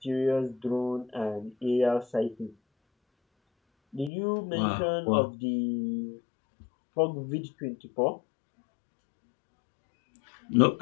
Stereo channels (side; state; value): right; drops out; at 4.1 s